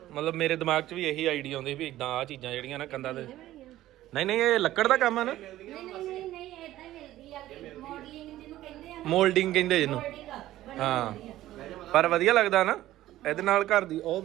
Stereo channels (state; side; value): quieter; left; 14.6 dB